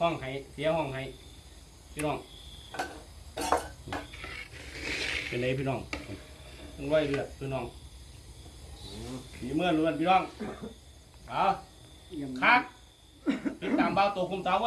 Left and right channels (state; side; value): identical; both; correlation 1.00